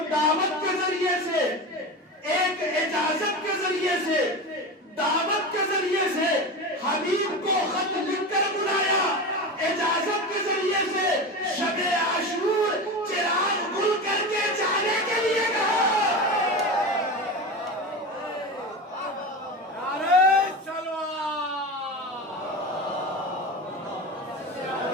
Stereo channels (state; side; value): normal; both; correlation 0.25